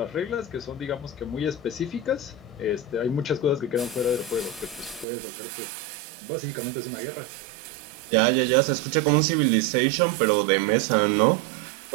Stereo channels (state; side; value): drops out; left; at 5.1 s